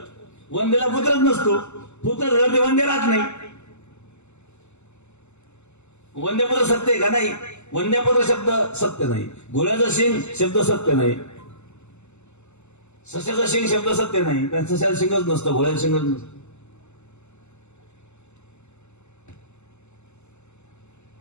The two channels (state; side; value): late; right; 0.83 ms